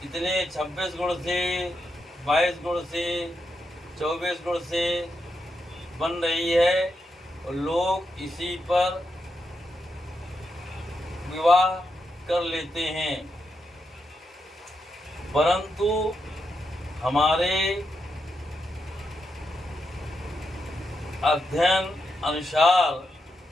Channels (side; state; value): both; normal; correlation 0.84